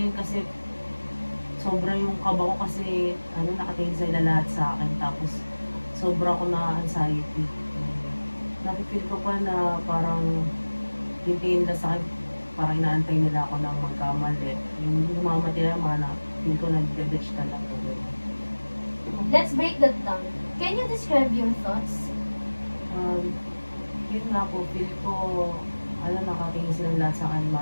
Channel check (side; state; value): both; inverted; correlation -1.00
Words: yun kasi sobra yung kaba ko kasi nakatingin sila lahat sa akin, tapos sobra ko na anxiety. Nakifeel ko pa na parang tingin nila sa akin, parang inaantay nila ako ng magkamali. Yung humamati na mga feel ko nag-detach ka lang. Let's break that down. Can you describe your thoughts? Yun nga po, feel ko, nakatingin silang lahat sa akin,